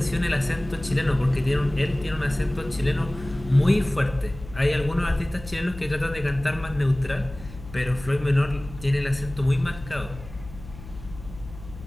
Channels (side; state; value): left; noise; hum, 16 dB below the sound